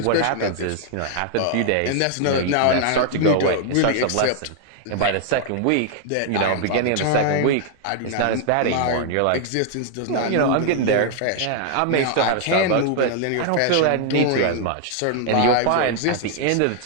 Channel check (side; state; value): both; different; correlation 0.00